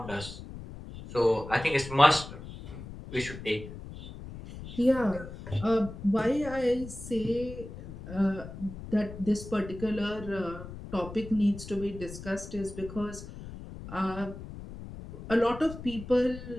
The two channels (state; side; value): noise; left; rumble, 12 dB below the sound